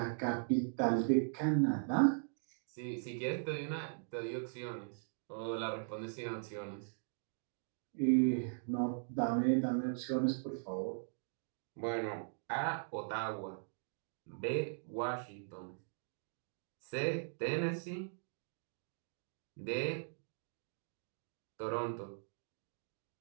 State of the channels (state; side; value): silent; left; digital silence